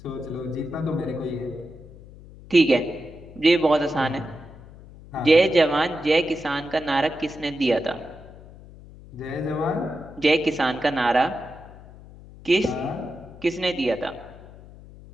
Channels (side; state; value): left; noise; hum, 19 dB below the sound